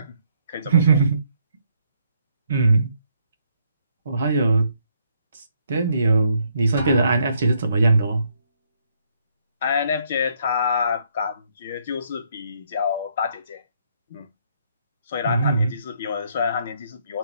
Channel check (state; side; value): inverted; both; correlation -0.71